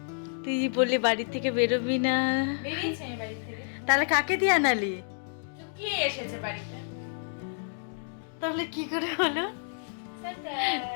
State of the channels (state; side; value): silent; right; digital silence